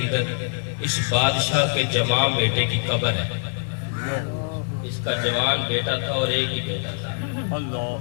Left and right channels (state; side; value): silent; right; 63 dB below the other